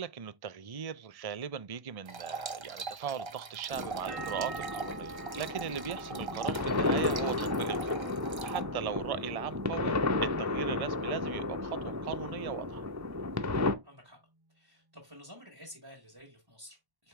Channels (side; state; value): left; late; 1.1 ms